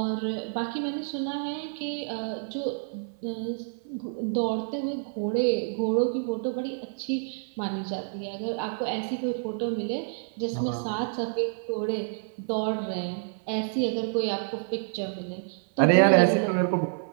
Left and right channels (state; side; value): silent; left; 57 dB below the other